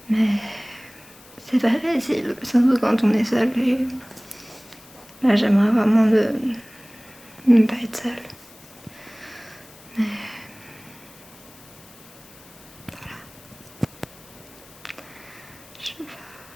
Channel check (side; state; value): left; noise; hiss, 24 dB below the sound